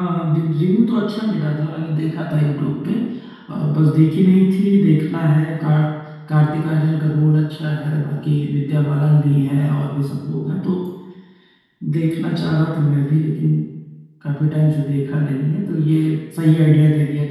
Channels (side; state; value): both; identical; correlation 1.00